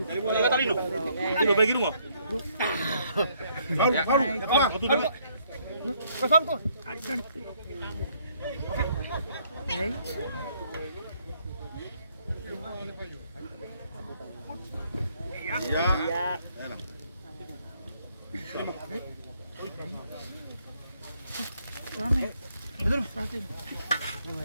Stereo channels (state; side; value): inverted; both; correlation -0.68